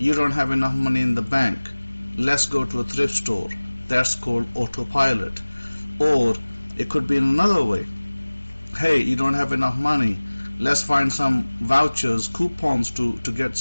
don't have enough money in the bank, let's go to a thrift store. That's called autopilot. Or it could be in another way. Hey, you don't have enough money, let's find some vouchers, coupons to get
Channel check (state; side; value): inverted; both; correlation -1.00